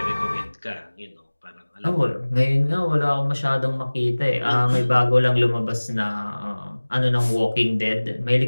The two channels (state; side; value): inverted; both; correlation -1.00